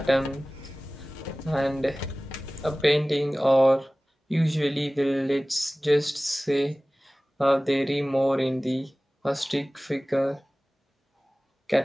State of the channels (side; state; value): both; normal; correlation 0.98